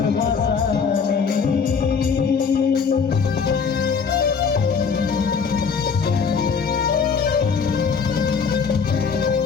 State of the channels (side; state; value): right; quieter; 5.8 dB